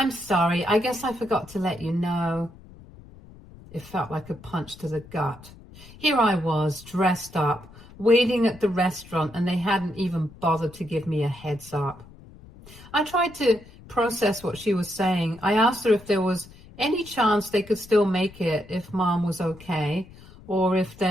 sorry, I guess I forgot to let you know." It felt like a punch to the gut. Here I was, dressed up, waiting at the restaurant, and they hadn't even bothered to give me a heads up. I tried to process what she was saying. I asked her if there was any chance they could still make it if Mom was okay, or if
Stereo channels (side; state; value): left; noise; rumble, 21 dB below the sound